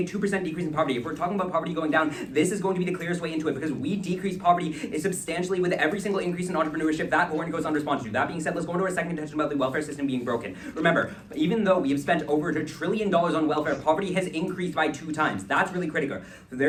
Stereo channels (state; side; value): identical; both; correlation 1.00